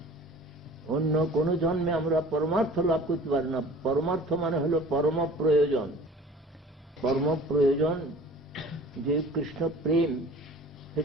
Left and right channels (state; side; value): normal; both; correlation 0.45